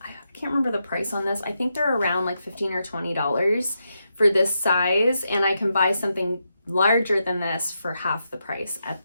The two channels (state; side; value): inverted; both; correlation -0.84